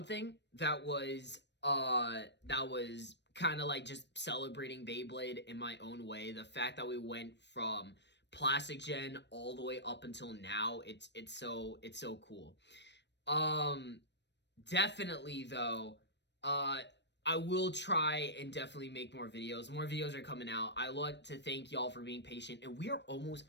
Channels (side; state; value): right; late; 0.51 ms